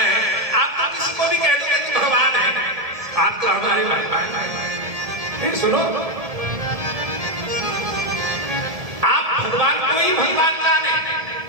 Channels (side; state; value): left; late; 1.7 ms